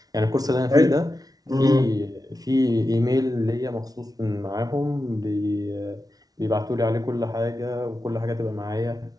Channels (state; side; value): late; left; 0.18 ms